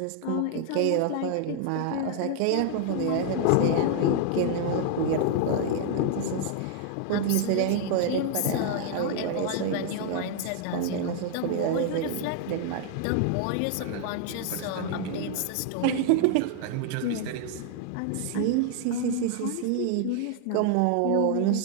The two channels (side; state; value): both; different; correlation 0.00